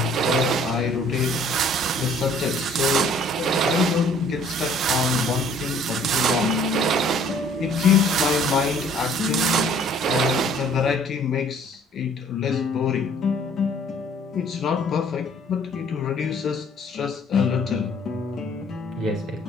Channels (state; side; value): normal; both; correlation 0.57